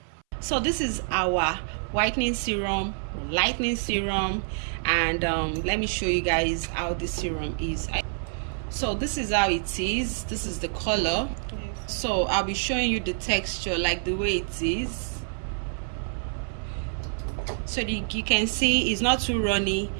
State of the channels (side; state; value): left; silent; 60 dB below the other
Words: So this is our whitening serum, lightening serum, and let me show you guys how this serum is. So this is how it is. This is the color. Yes. So I'll be showing you the texture, like the way it is. So you can see it's not too runny,